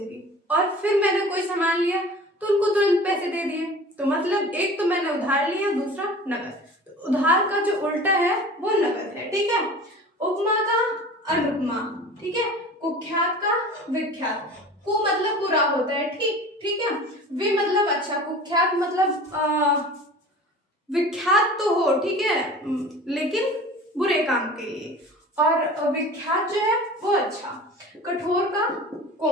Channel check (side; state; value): both; normal; correlation 0.40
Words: और फिर मैंने कोई सामान लिया तो उनको तुरंत पैसे दे दिए, तो मतलब एक तो मैंने उधार लिया, दूसरा नकद। तो उधार का जो उल्टा है वो नकद है, ठीक है। उपमा का अनुपमा, ठीक है। कुख्यात का विख्यात, कु मतलब बुरा होता है, ठीक है। वि मतलब अच्छा, कुख्यात मतलब विख्यात तो हो, ठीक है, लेकिन बुरे काम के लिए। और विख्यात जो है वो अच्छा। कठोर का